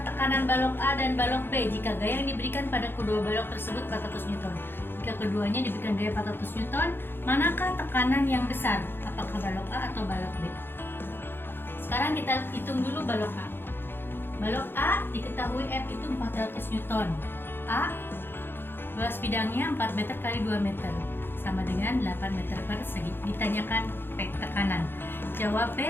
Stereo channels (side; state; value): right; late; 0.10 ms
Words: tekanan balok A dan balok B jika gaya yang diberikan pada kedua balok tersebut 400 Newton. Jika keduanya diberikan gaya 400 Newton, manakah tekanan yang besar? Apakah balok A atau balok B? Sekarang kita hitung dulu balok A. Balok A diketahui F itu 400 Newton. A luas bidangnya 4 meter kali 2 meter sama dengan 8 meter persegi. Ditanyakan P tekanan. Jawab